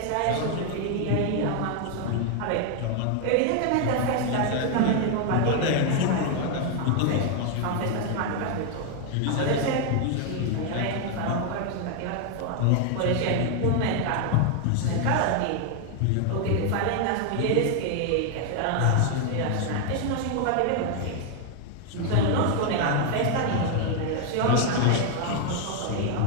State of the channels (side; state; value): both; different; correlation 0.00